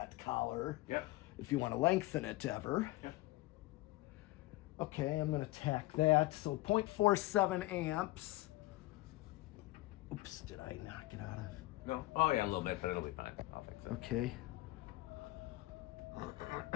collar. Yep. If you want to lengthen it ever. Yep. Okay, I'm going to tack that. So 0.47 amps. Oops, did I knock it out of? No. Oh yeah, a little bit, but it'll be fine. I'll fix it. Okay.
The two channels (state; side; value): quieter; right; 18.9 dB